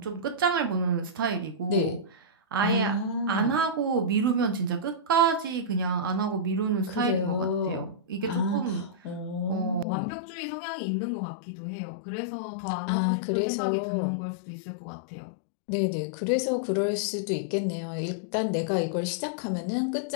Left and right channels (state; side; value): drops out; right; at 9.9 s